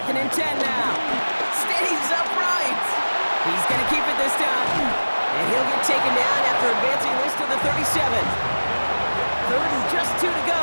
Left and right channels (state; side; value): inverted; both; correlation -1.00